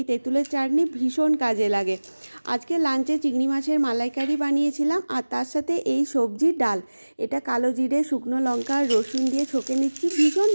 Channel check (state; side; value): inverted; both; correlation -1.00